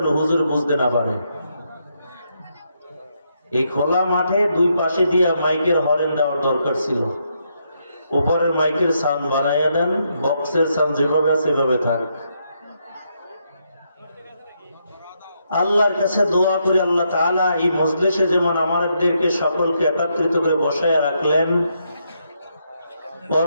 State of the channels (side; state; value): both; inverted; correlation -0.78